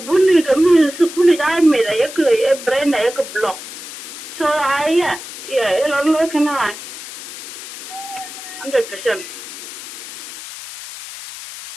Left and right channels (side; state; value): left; noise; hiss, 12 dB below the sound